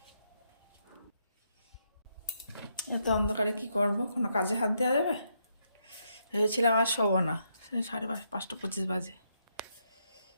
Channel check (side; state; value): both; inverted; correlation -0.78